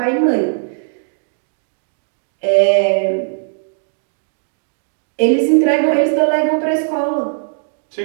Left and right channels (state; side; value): silent; left; digital silence